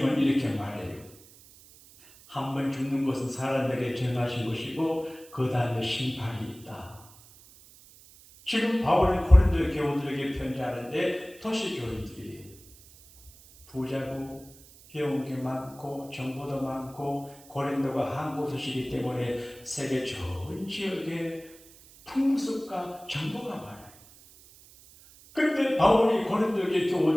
이렇게 말해요. 한 번 죽는 것은 사람에게 정하신 것이고 그 다음에 심판이 있다. 지금 바울은 고린도 교우들에게 편지하는데 도시교인들이 부자고 배운 게 많고 정보도 많고 고린도가 항구 도시이기 때문에 세계 전 지역에 풍습과 정보가 많아요. 그런데 바울이 고린도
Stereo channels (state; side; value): noise; right; hiss, 23 dB below the sound